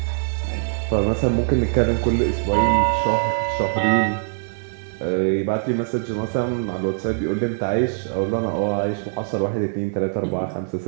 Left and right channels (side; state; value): left; silent; digital silence